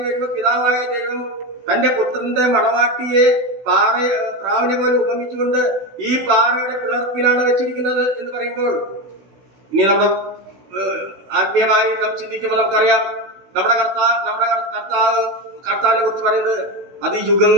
വരുമ്പോൾ പിതാവായ ദൈവം തന്റെ പുത്രന്റെ മണവാട്ടിയെ പ്രാവിനെ പോലെ ഉപമിച്ചുകൊണ്ട് ഈ പാറയുടെ പിളർപ്പിലാണ് വെച്ചിരിക്കുന്നത് എന്ന് പറയുമ്പോൾ, ഇനി നമ്മുടെ ആത്മീയമായി നാം ചിന്തിക്കുമ്പോൾ നമുക്കറിയാം നമ്മുടെ കർത്താവിനെ കുറിച്ച് പറയുന്നത് അത്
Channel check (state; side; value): late; left; 16 ms